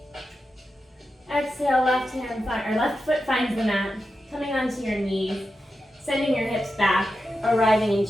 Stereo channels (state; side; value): normal; both; correlation 0.90